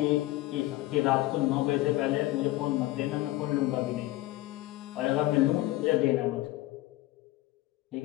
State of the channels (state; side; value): quieter; right; 17.6 dB